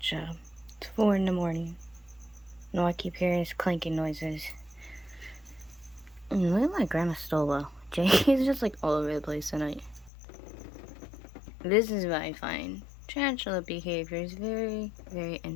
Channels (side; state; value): right; drops out; at 10.1 s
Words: It's 4 in the morning. And all I keep hearing is clanking noises. And look at my grandma's stolo. Jay's just like all over the place tonight. This is what I find. Tarantula behavior is very, very